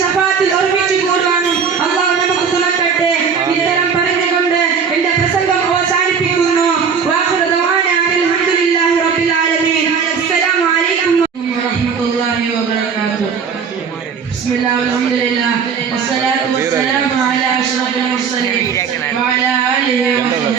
ശഫാത്തിൽ ഒരുമിച്ച് കൂടുവാനും അല്ലാഹു നമുക്ക് തുണക്കട്ടെ. ഇത്തരം പറഞ്ഞുകൊണ്ട് എന്റെ പ്രസംഗം അവസാനിപ്പിക്കുന്നു. വാഖിറു ദഅവാന അൽഹംദുലില്ലാഹി റബ്ബിൽ ആലമീൻ. അസ്സലാമു അലൈക്കും വറഹ്മത്തുള്ളാഹി വബറകാതുഹു. ബിസ്മില്ലാഹി വൽഹംദുലില്ലാഹ് വസ്സലാത്തു വസ്സലാമു അലാ അഷ്റഫിൽ മുർസലീൻ വഅലാ ആലിഹി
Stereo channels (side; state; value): left; quieter; 6.4 dB